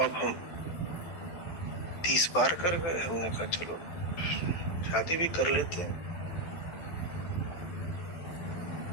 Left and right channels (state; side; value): late; right; 12 ms